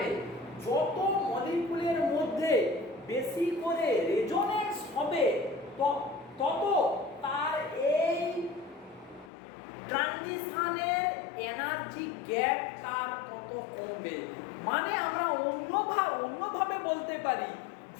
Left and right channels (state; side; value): drops out; right; at 9.3 s